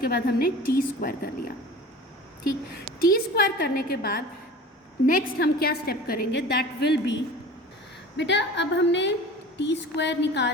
बाद हमने T स्क्वायर कर लिया, ठीक। T स्क्वायर करने के बाद नेक्स्ट हम क्या स्टेप करेंगे, दैट विल बी, बेटा अब हमने T स्क्वायर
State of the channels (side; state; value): both; normal; correlation 0.39